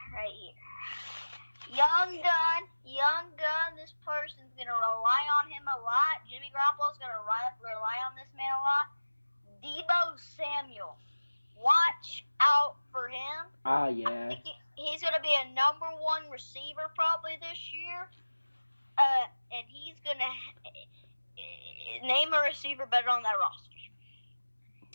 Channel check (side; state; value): both; inverted; correlation -1.00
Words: right here. Young gun. This person's gonna rely on him a lot. Jimmy Garoppolo's gonna rely on this man a lot. Deebo Samuel. Watch out for him. Yeah. I think he's going to be a number one receiver probably this year. And he's going to name a receiver better on that roster.